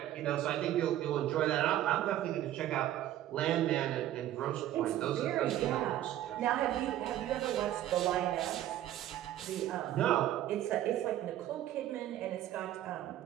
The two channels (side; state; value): left; quieter; 12.9 dB